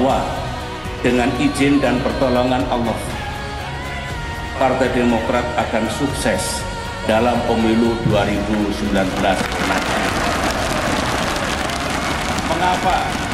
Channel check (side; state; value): both; identical; correlation 1.00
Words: dengan izin dan pertolongan Allah, Partai Demokrat akan sukses dalam pemilu 2019 mendatang.